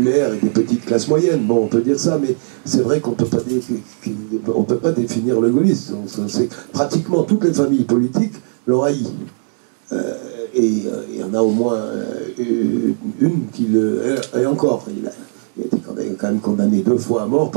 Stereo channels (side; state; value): left; silent; digital silence